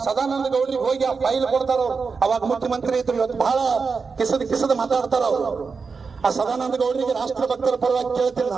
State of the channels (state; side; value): quieter; left; 5.0 dB